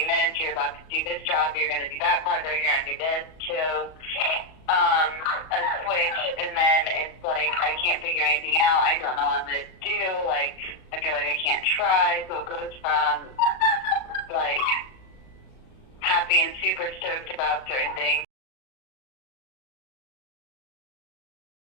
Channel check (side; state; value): right; late; 38 ms